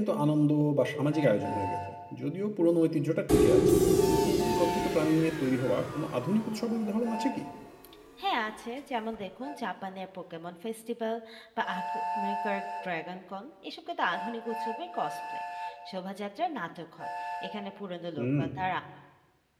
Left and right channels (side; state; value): both; identical; correlation 1.00